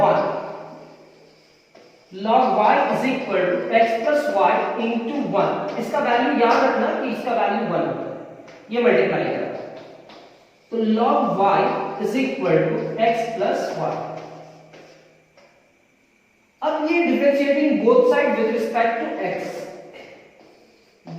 1, log y is equal to x plus y into 1, इसका वैल्यू याद रखना कि इसका वैल्यू 1 होता है, ये मल्टीप्लाई करना, तो log y is equal to x plus y। अब ये differentiating both side with respect to x,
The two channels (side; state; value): both; identical; correlation 1.00